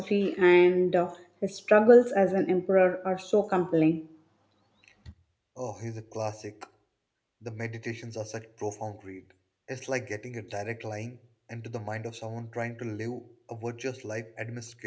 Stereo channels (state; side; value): identical; both; correlation 1.00